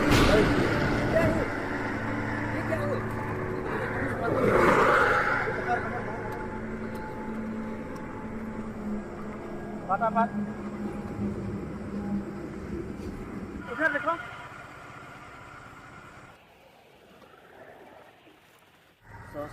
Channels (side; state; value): both; identical; correlation 1.00